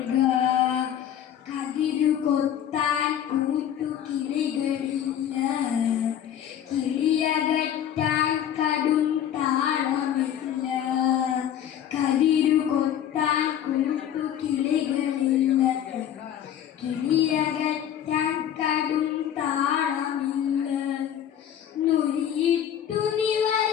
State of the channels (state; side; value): quieter; right; 10.0 dB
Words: കതിരു കൊത്താൻ കൂട്ടുകിളികളില്ല, കിളിയകറ്റാൻ കടും താളമില്ല. കതിരു കൊത്താൻ കൂട്ടുകിളികളില്ല, കിളിയകറ്റാൻ കടും താളമില്ല. നുരിയിട്ടു